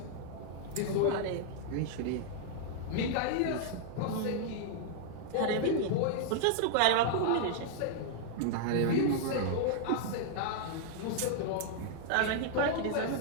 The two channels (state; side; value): different; both; correlation -0.01